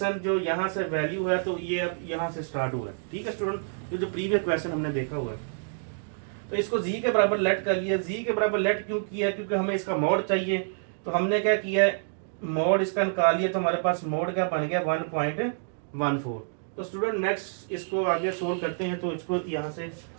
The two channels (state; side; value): silent; left; digital silence